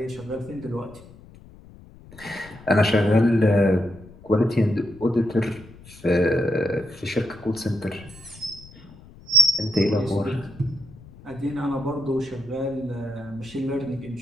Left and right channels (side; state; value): left; noise; rumble, 21 dB below the sound